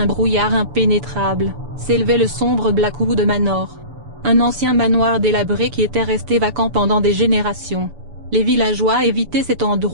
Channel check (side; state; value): left; late; 6.9 ms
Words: brouillard impénétrable, s'élevait le sombre Blackwood Manor. Un ancien manoir délabré qui était resté vacant pendant des générations. Les villageois évitaient cet